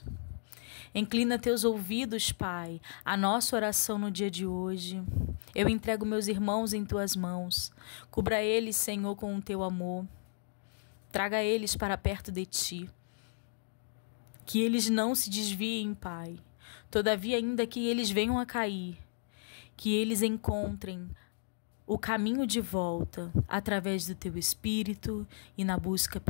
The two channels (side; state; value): right; silent; digital silence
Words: Inclina Teus ouvidos, Pai, à nossa oração no dia de hoje. Eu entrego meus irmãos em Tuas mãos. Cubra eles, Senhor, com o Teu amor. Traga eles para perto de Ti. Que eles não se desviem, Pai. Todavia, ainda que eles venham a cair, que eles encontrem o caminho de volta através do Teu Espírito e na busca